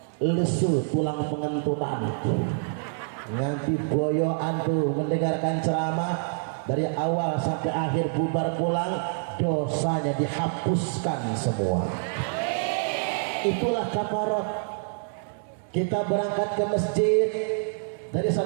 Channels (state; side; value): silent; left; digital silence